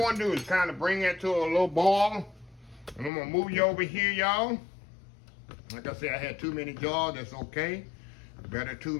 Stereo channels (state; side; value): drops out; right; at 3.1 s